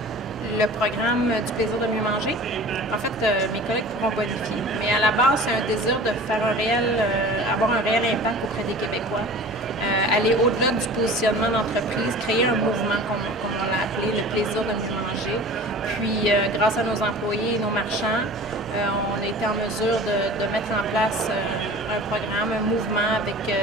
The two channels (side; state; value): both; normal; correlation 0.41